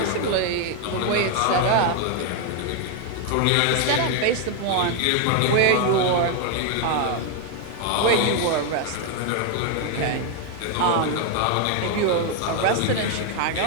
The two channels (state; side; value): different; both; correlation 0.01